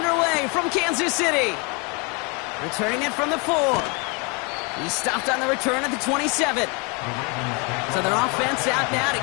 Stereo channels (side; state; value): right; quieter; 31.8 dB